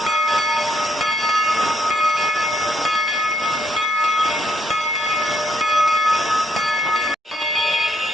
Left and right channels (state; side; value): normal; both; correlation 0.74